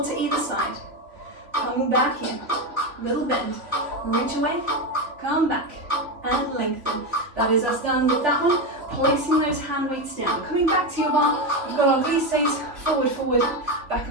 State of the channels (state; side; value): late; left; 3.6 ms